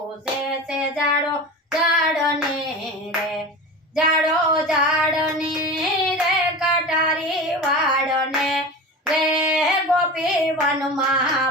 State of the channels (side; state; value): both; normal; correlation 0.30